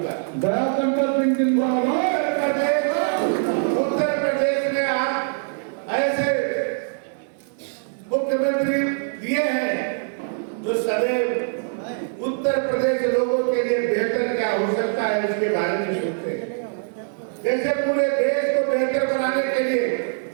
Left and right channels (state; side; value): silent; left; digital silence